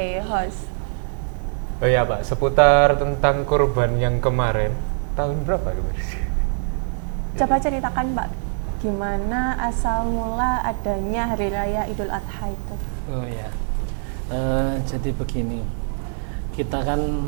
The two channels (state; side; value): silent; left; digital silence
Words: host. Oh iya Pak, seputar tentang kurban yang kemarin. Tahun berapa kemarin? Coba ceritakan Pak, gimana asal mula adanya Hari Raya Idul Adha itu? Oh ya, jadi begini, kita kan